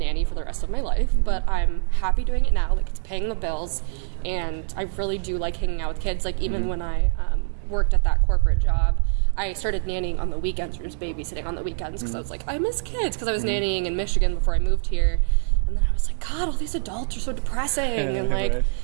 for the rest of my life, but I'm happy doing it now. Like, it's paying the bills. And I really do like hanging out with kids. Like, even when I worked at that corporate job, I started nannying on the weekends or just babysitting on the weekends because I was like, I miss kids, because I was nannying in Michigan before I moved here. And then I was like, God, all these adults are so depressing. And like,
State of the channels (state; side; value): silent; left; 63 dB below the other